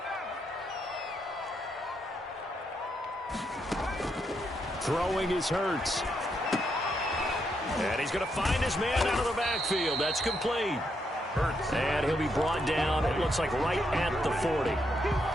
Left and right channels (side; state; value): both; normal; correlation 0.79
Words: Throwing is Hurts. And he's going to find his man out of the backfield. That's complete. Hurts. And he'll be brought down, it looks like right at the 40.